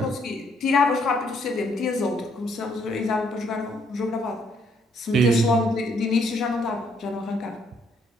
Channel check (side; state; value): both; normal; correlation 0.69